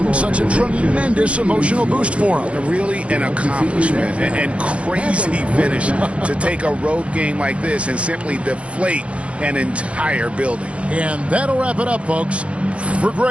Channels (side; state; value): left; late; 0.061 ms